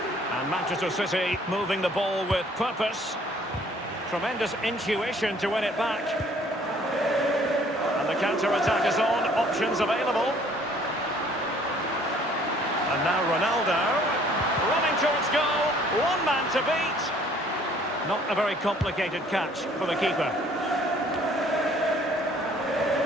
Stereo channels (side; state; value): both; normal; correlation 0.58